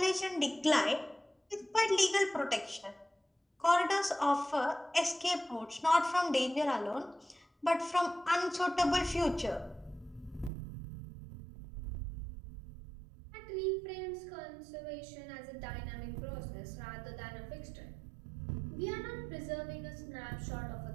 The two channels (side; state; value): left; drops out; at 10.5 s